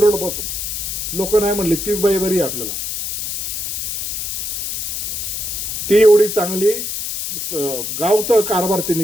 पासून. लोक नाही म्हणली तीच बाई बरी आहे आपल्याला. ती एवढी चांगली गावचा कारभार तिने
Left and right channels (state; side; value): noise; left; hiss, 4 dB below the sound